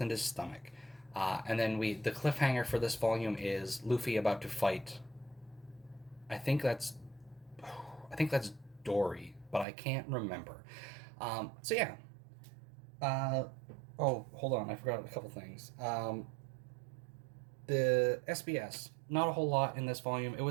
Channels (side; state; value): left; drops out; at 9.7 s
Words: and his stomach. And then the cliffhanger for this volume is Luffy about to fight. I think that's Dory, but I can't remember. So yeah. Oh, hold on, I forgot a couple things. The SBS, not a whole lot in this volume. It